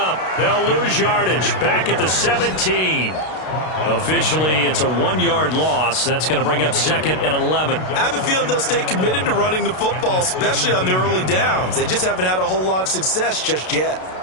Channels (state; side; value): late; right; 32 ms